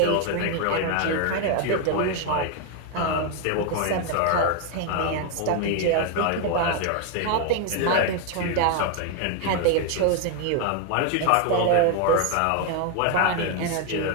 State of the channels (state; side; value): different; both; correlation 0.01